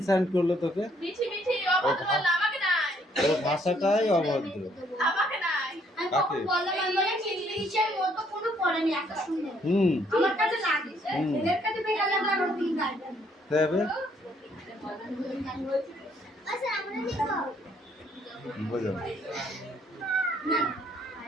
করলো তোকে? ওর ভাষাটাই অভদ্র। কাকে? হুম দেবে বুঝো।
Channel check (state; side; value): normal; both; correlation 0.67